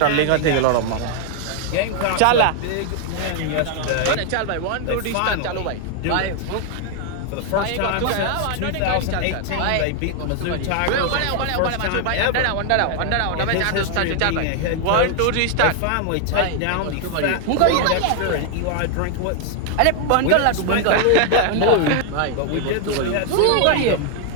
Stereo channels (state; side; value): different; both; correlation 0.00